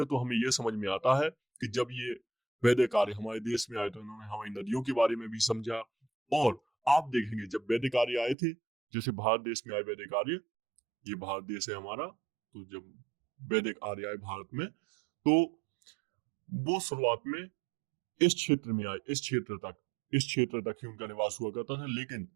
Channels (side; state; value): left; drops out; at 8.3 s